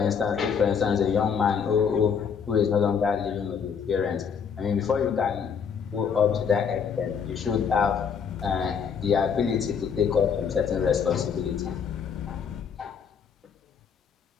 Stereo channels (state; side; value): quieter; right; 6.7 dB